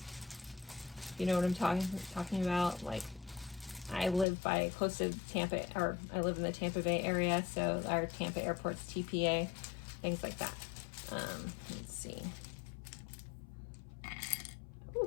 You know what I'm talking about? Like, I live close to Tampa, or I live in the Tampa Bay area, so our Tampa airport's TPA, things like that. Let's see.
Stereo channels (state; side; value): drops out; right; at 4.2 s